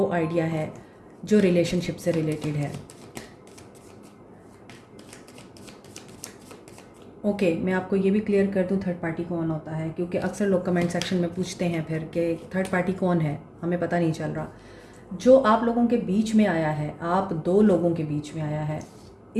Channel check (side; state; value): both; identical; correlation 1.00